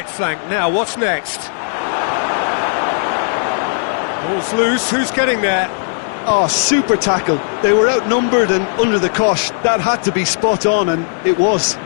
flank. Now, what's next? Ball's loose, who's getting there? Oh, super tackle. They were outnumbered and under the cosh. That had to be spot on, and it was.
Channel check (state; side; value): silent; right; digital silence